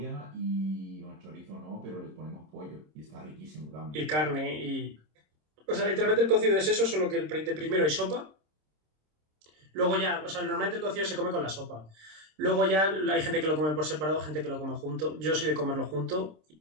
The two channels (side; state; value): left; late; 26 ms